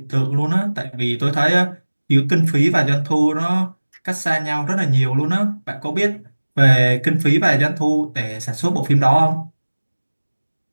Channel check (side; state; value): both; inverted; correlation -1.00